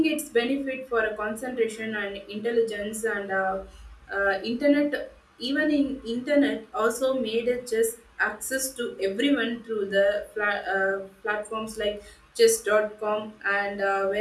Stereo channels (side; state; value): both; identical; correlation 1.00